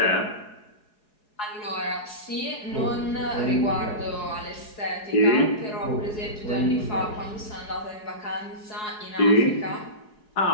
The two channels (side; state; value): right; late; 4.7 ms